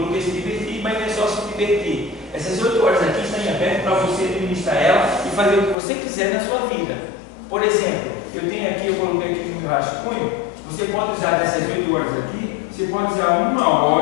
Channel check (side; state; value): right; drops out; at 5.8 s